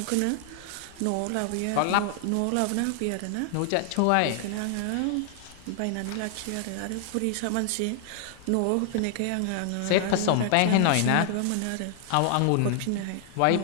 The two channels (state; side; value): different; both; correlation 0.00